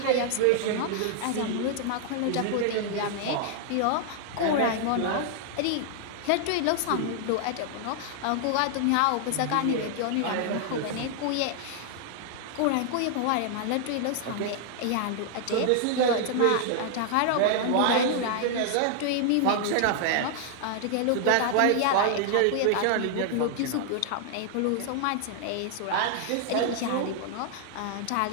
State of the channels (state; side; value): different; both; correlation 0.00